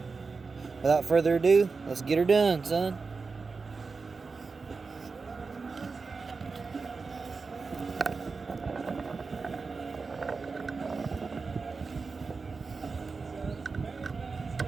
without further ado, let's get her done, son.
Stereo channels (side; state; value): left; quieter; 4.5 dB